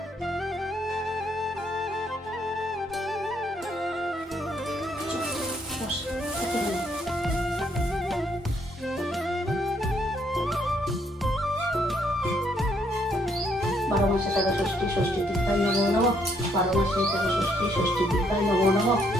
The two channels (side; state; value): both; normal; correlation 0.71